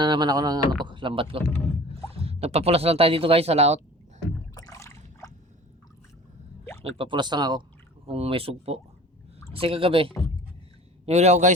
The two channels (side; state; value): both; normal; correlation 0.42